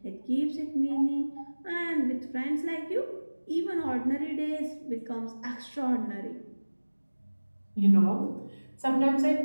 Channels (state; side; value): inverted; both; correlation -1.00